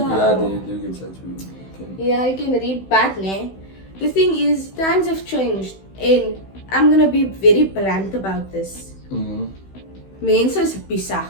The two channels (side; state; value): right; late; 16 ms